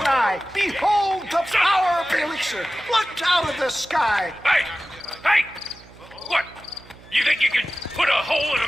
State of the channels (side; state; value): right; noise; hum, 23 dB below the sound